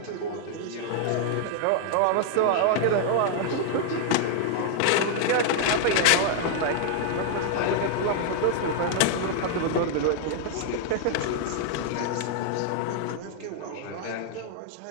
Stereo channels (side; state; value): both; different; correlation 0.00